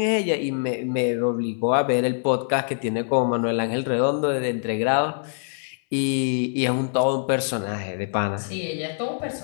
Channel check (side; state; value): right; silent; 62 dB below the other